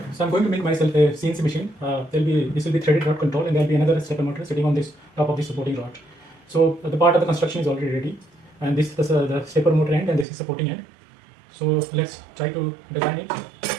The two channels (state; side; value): drops out; left; at 10.2 s